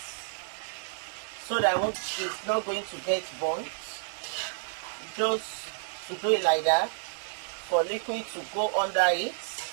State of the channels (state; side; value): silent; left; digital silence